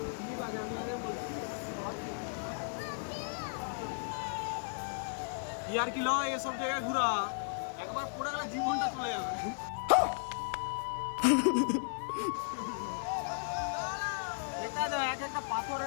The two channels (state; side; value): silent; right; 54 dB below the other